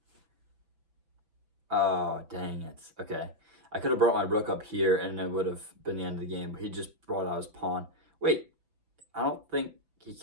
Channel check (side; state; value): left; late; 6.0 ms